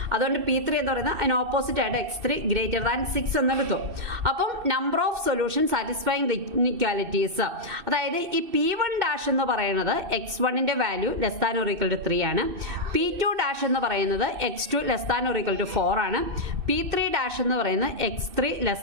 അതുകൊണ്ട് P3 എന്ന് പറയുന്നത് അതിന് ഓപ്പോസിറ്റ് ആയിട്ട് x3 ഗ്രേറ്റർ ദാൻ 6 എന്നെടുത്തു. അപ്പം number of solution satisfying the equalities, അതായത് ഈ P1 എന്ന് പറയുന്നത് x1ന്റെ value less than or equal to 3 ആണ്. P2 എന്ന് പറയുന്നത് x2 less than or equal to 4 ആണ്. P3 എന്ന് പറയുന്നത് x3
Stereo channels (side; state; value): left; late; 2.6 ms